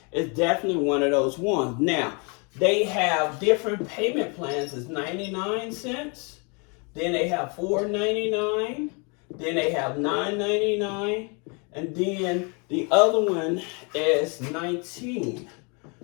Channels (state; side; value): quieter; right; 33.3 dB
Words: is definitely one of those ones. Now they have different payment plans. It's 99 cents. Then they have $4.99. Then they have $9.99, and then the other one is